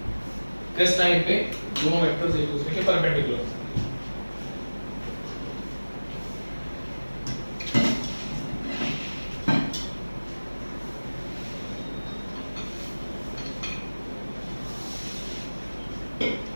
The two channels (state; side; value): inverted; both; correlation -1.00